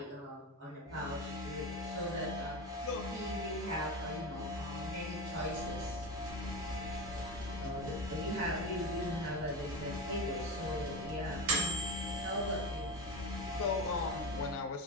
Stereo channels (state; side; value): normal; both; correlation 0.22